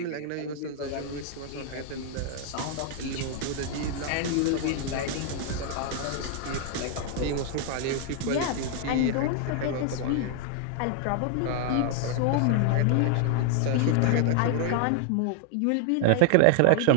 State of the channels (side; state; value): both; different; correlation 0.00